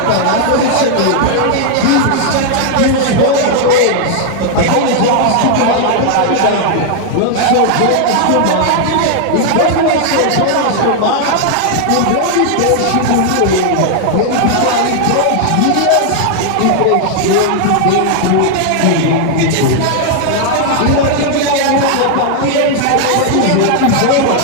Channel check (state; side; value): different; both; correlation 0.00